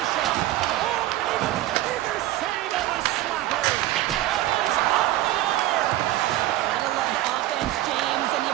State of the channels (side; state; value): left; quieter; 15.2 dB